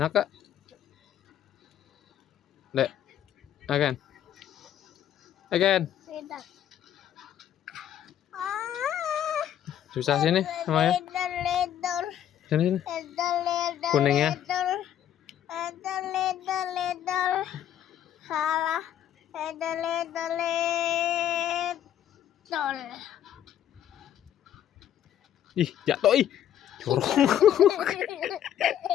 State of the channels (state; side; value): quieter; right; 10.7 dB